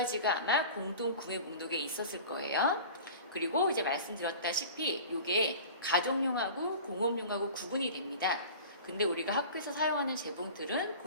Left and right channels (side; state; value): both; inverted; correlation -0.39